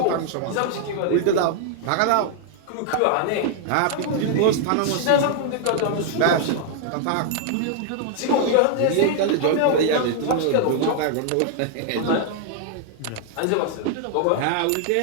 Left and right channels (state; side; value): different; both; correlation 0.00